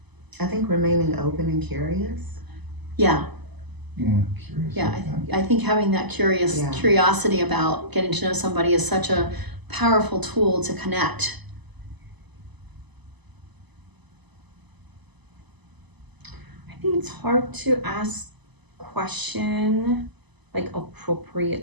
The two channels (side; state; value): left; late; 1.0 ms